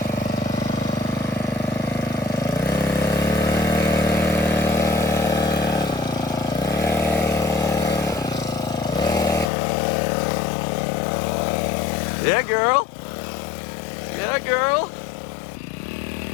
Yeah, girl. Yeah, girl. All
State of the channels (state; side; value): drops out; right; at 9.5 s